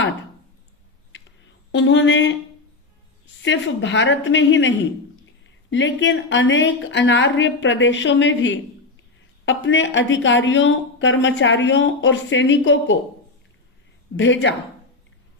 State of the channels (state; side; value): quieter; right; 3.4 dB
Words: उन्होंने सिर्फ भारत में ही नहीं लेकिन अनेक अनार्य प्रदेशों में भी अपने अधिकारियों, कर्मचारियों और सैनिकों को भेजा,